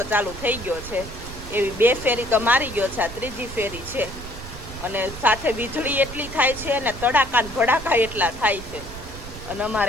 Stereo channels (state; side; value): noise; right; rumble, 12 dB below the sound